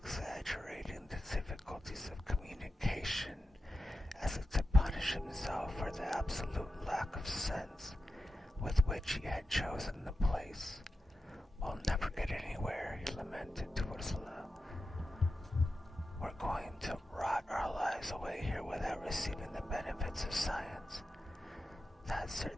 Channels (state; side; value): normal; both; correlation 0.91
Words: the difficulties of communication, as if to punish himself for the absolute lack of sense with which he had chosen the place. "We'll never get anywhere," he lamented to Ursula. "We're going to rot our lives away here without receiving the benefits of science." That